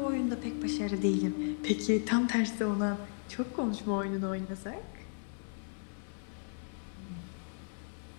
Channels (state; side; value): silent; right; digital silence